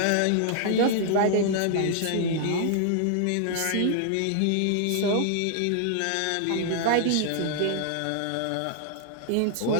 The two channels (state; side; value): different; both; correlation -0.01